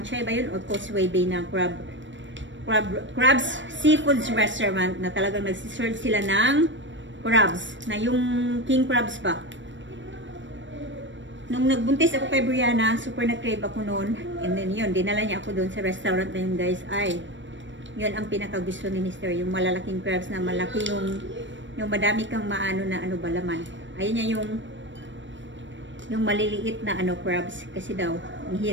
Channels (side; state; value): left; late; 0.54 ms